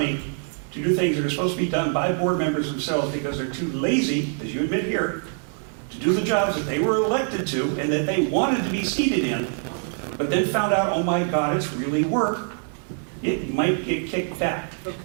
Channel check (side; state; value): left; silent; 57 dB below the other